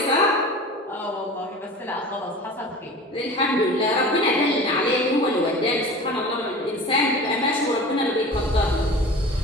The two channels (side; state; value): both; normal; correlation 0.37